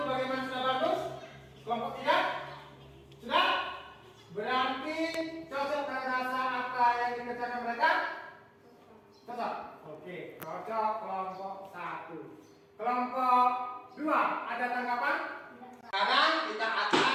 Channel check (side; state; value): both; identical; correlation 1.00